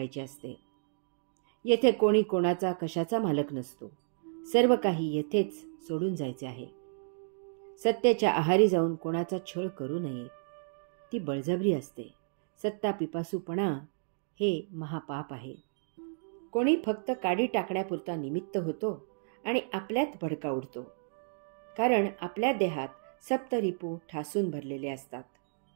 असते. येथे कोणी कोणाचा कशाचा मालक नसतो. सर्व काही येथेच सोडून जायचे आहे. सत्तेच्या आहारी जाऊन कोणाचा छळ करू नये. ती बळजबरी असते. सत्ता पिपासूपणा हे महापाप आहे. कोणी फक्त काडी टाकण्यापुरता निमित्त होतो आणि आपल्यात भडका उडतो. कारण आपल्या देहात सप्तरिपू ठासून भरलेले असतात.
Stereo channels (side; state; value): left; silent; digital silence